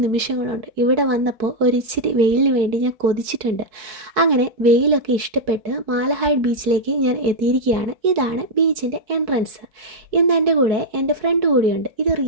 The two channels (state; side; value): late; left; 4.6 ms